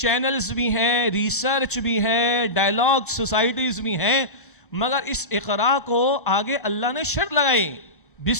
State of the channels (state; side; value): normal; both; correlation -0.17